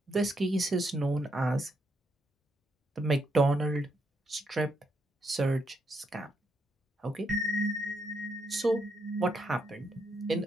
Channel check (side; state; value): both; normal; correlation 0.78